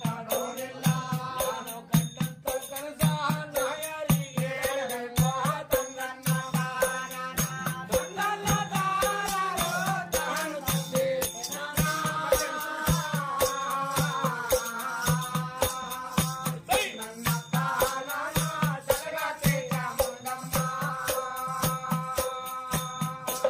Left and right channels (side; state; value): both; identical; correlation 1.00